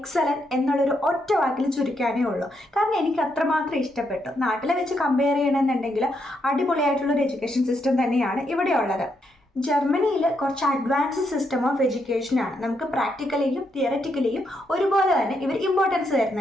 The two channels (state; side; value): normal; both; correlation 0.78